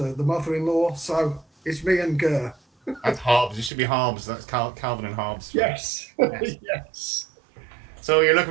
the mother-in-law, so it's me and Gur. That's Hobbs. It should be Hobbs. That's Calvin and Hobbs. Yes. Yes. So you're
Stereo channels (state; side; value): drops out; left; at 3.7 s